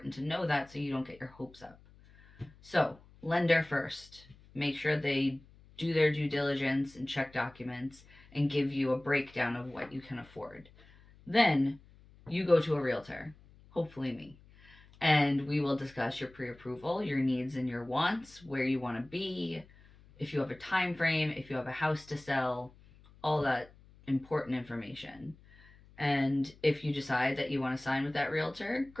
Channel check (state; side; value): noise; left; hum, 25 dB below the sound